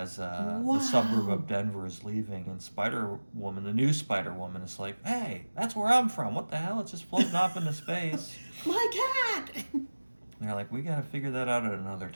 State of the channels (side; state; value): both; inverted; correlation -1.00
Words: the suburb of Denver is leaving, and Spider-Woman, the new Spider-Woman, is like, hey, that's where I'm from. What the hell? It's just floating off into space. My cat. And they're like, we gotta figure that out at another